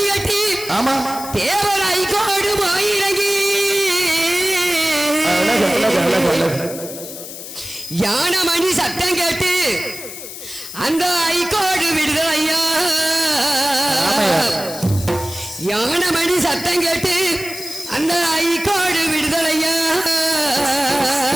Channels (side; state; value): left; noise; hiss, 11 dB below the sound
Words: கட்டி, ஆமா தேவராய் கோடு போயிறங்கி, யானை மணி சத்தம் கேட்டு அந்த ஐகோடு விடுதலையா. யானை மணி சத்தம் கேட்டு அந்த ஐகோடு விடுதலையா.